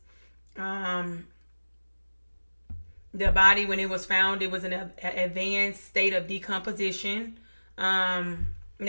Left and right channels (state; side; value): inverted; both; correlation -1.00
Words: The body, when it was found, it was in an advanced state of decomposition. Now